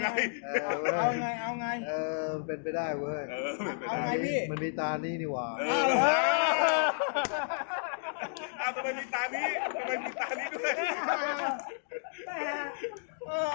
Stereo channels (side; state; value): right; silent; digital silence